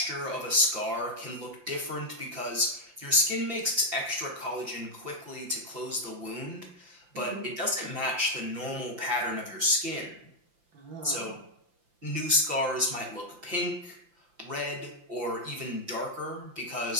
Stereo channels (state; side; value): late; left; 5.8 ms